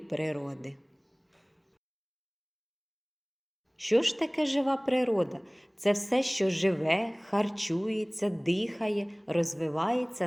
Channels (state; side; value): identical; both; correlation 1.00